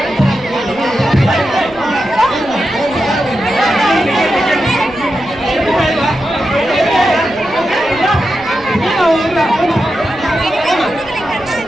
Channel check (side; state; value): right; noise; rumble, 22 dB below the sound